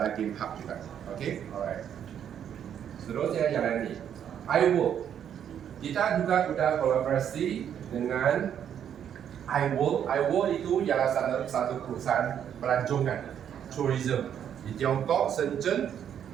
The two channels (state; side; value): quieter; left; 9.1 dB